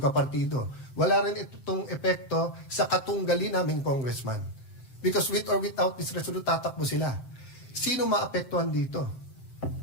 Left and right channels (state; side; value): late; right; 7.7 ms